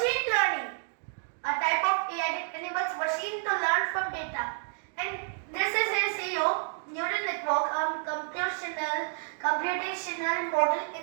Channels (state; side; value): silent; left; digital silence